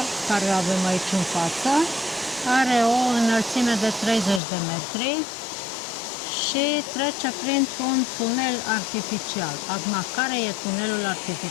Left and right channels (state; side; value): drops out; right; at 4.4 s